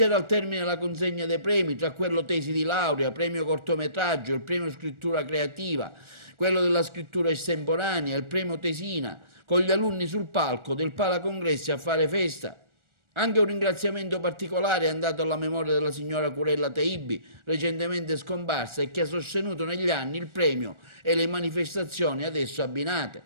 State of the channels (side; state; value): left; late; 1.4 ms